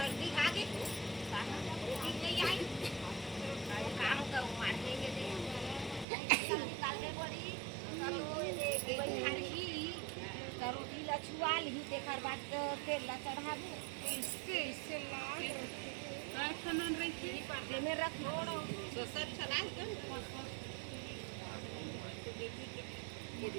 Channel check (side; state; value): left; drops out; at 6.1 s